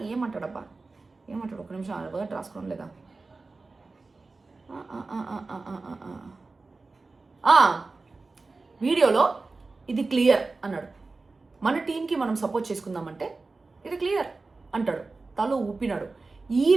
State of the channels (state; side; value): quieter; left; 3.7 dB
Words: ఏమంటాడబ్బా, ఏమంటాడు, ఒక నిమిషం వర్డ్ రాసుకోవడం లేదా. వీడియోలో ఇది క్లియర్ అన్నాడు, మన టీంకి మనం సపోర్ట్ చేసుకుందామంటే ఇది క్లియర్ అంటాడు, తల ఊపినాడు. ఈ